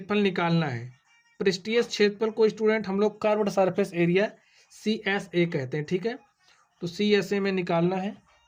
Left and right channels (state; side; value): identical; both; correlation 1.00